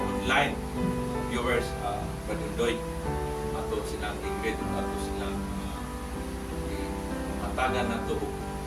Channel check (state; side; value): identical; both; correlation 1.00